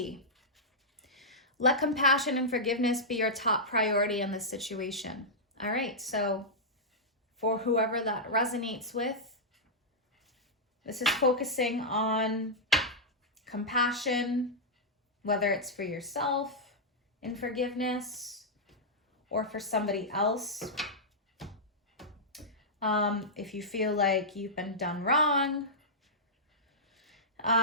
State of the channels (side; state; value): both; normal; correlation -0.10